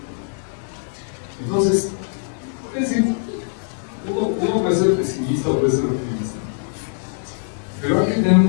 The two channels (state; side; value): silent; right; 64 dB below the other